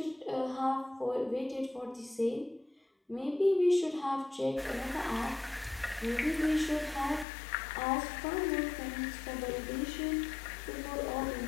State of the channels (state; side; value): drops out; right; at 7.2 s